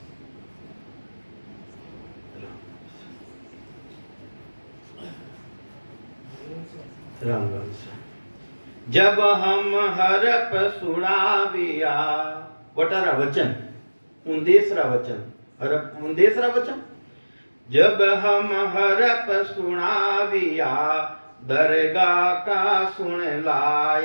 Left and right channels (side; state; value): both; inverted; correlation -1.00